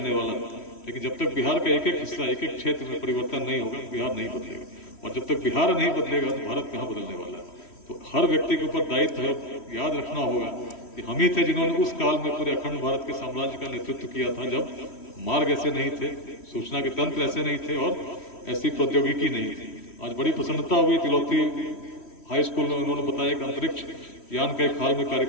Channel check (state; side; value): late; right; 3.1 ms